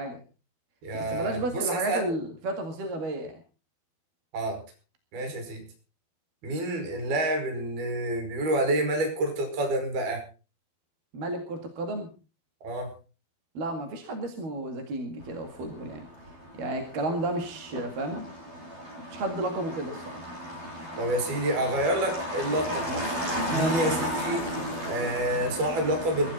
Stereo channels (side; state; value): left; late; 12 ms